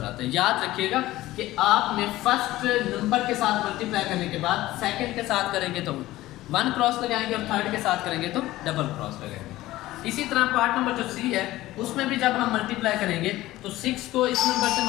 आता है। याद रखिएगा कि आपने फर्स्ट नंबर के साथ मल्टीप्लाई करने के बाद सेकंड के साथ करेंगे तो 1 क्रॉस लगाएंगे और थर्ड के साथ करेंगे तो डबल क्रॉस लगाएंगे। इसी तरह पार्ट नंबर जो सी है उसमें भी जब हम मल्टीप्लाई करेंगे तो 6 को इस नंबर से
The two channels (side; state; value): right; quieter; 16.6 dB